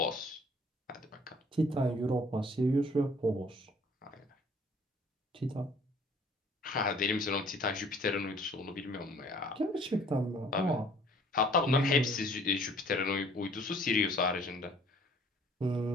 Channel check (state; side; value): normal; both; correlation 0.55